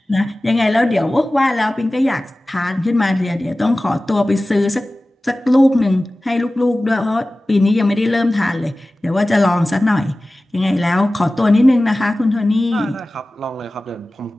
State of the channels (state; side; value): normal; both; correlation 0.97